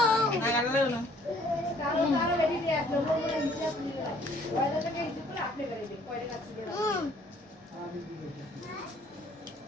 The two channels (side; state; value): both; normal; correlation 0.59